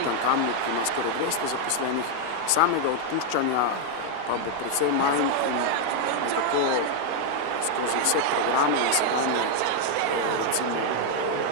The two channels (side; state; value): both; different; correlation 0.00